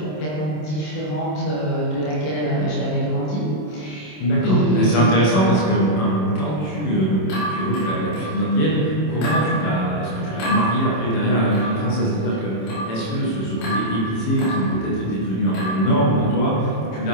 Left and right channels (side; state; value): right; late; 27 ms